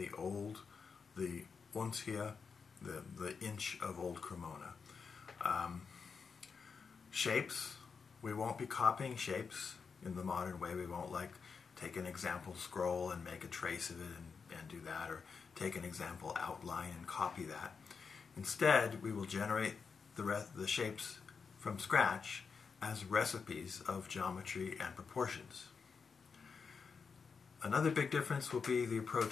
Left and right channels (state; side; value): quieter; right; 5.5 dB